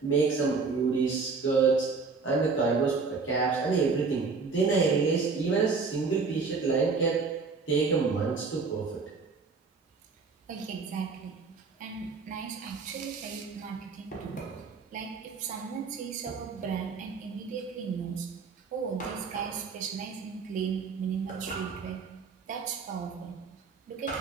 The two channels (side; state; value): left; quieter; 4.7 dB